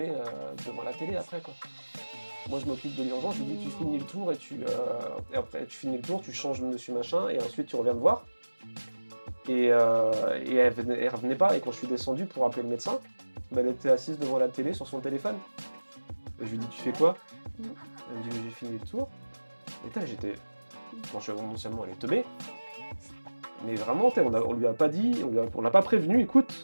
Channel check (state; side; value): inverted; both; correlation -1.00